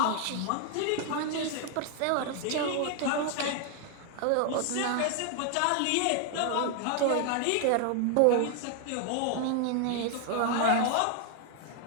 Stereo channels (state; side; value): different; both; correlation 0.00